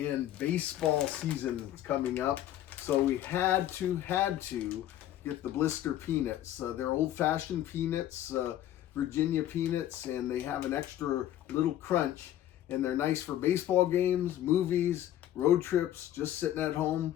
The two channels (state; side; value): quieter; right; 12.4 dB